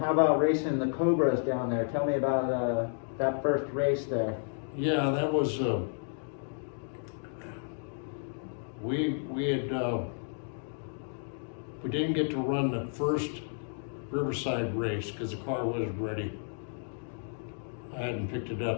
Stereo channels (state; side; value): silent; right; 57 dB below the other